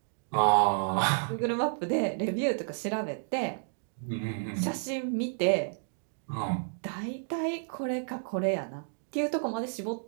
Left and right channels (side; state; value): left; silent; digital silence